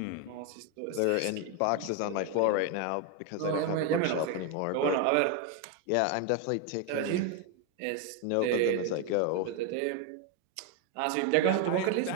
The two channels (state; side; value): different; both; correlation 0.01